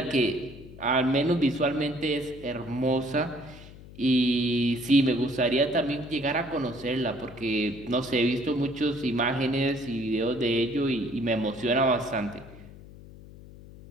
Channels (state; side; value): noise; left; hum, 18 dB below the sound